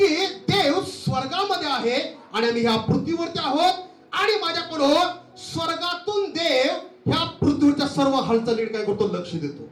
देव स्वर्गामध्ये आहे आणि आम्ही ह्या पृथ्वीवरती आहोत. आणि माझ्या पुढं स्वर्गातून देव ह्या पृथ्वीच्या सर्व हालचालीकडे काय करतो? लक्ष देतो.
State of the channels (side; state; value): both; identical; correlation 1.00